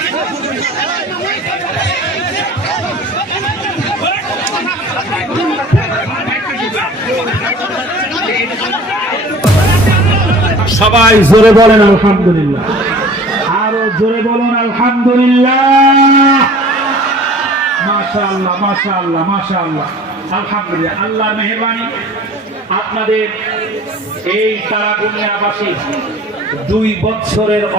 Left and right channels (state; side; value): normal; both; correlation 0.46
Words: সবাই জোরে বলেন আলহামদুলিল্লাহ, আরো জোরে বলুন আলহামদুলিল্লাহ। মাশাআল্লাহ মাশাআল্লাহ মাশাআল্লাহ, আলহামদুলিল্লাহ। আল্লাহর মেহেরবানি, আপনাদের এই তারাগুনিয়াবাসী 2 বছরের